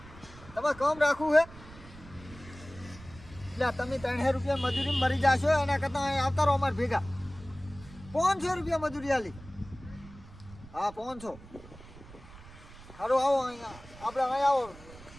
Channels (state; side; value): noise; right; rumble, 18 dB below the sound